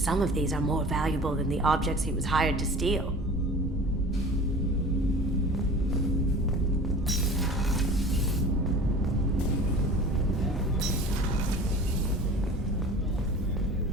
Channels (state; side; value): normal; both; correlation 0.40